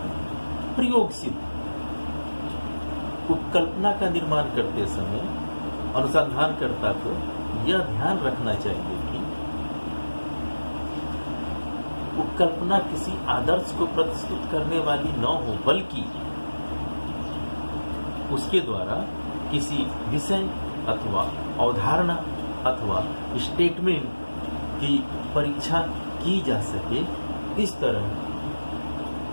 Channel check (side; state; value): both; inverted; correlation -1.00